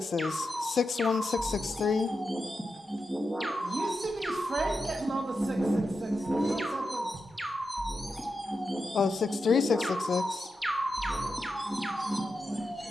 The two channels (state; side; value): normal; both; correlation 0.88